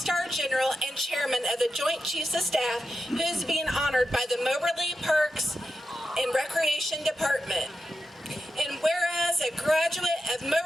general and chairman of the Joint Chiefs of Staff, who is being honored by the Moberly Parks and Recreation Department. And whereas a graduate of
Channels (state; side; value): normal; both; correlation 0.90